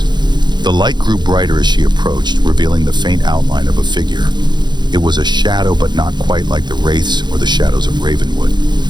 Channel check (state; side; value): late; left; 0.21 ms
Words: The light grew brighter as she approached, revealing the faint outline of a figure. It was a shadow, but not quite like the wraiths or the shadows of Ravenwood.